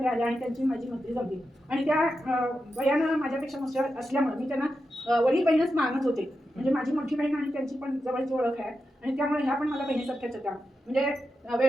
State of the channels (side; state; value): both; normal; correlation 0.89